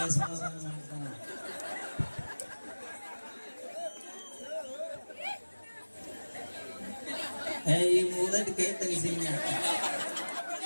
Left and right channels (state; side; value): inverted; both; correlation -1.00